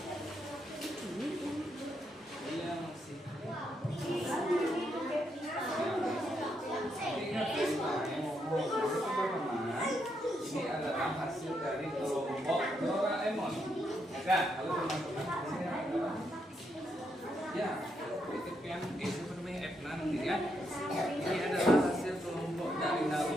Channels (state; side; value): normal; both; correlation 0.79